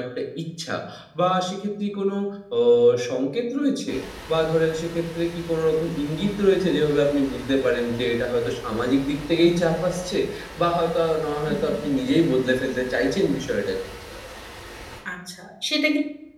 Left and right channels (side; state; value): both; identical; correlation 1.00